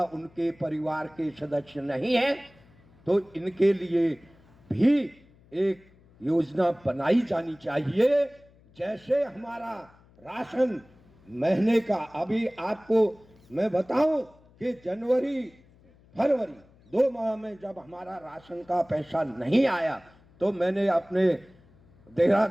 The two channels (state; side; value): noise; left; hum, 28 dB below the sound